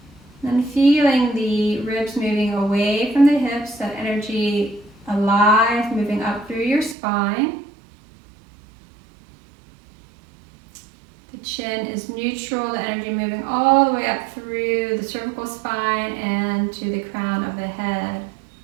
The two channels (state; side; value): drops out; left; at 7.0 s